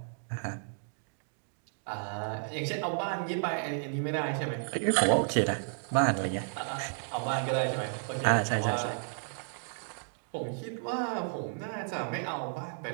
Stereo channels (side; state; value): left; silent; digital silence